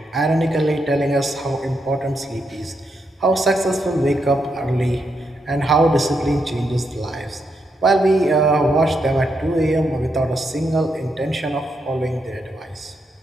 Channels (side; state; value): both; normal; correlation 0.81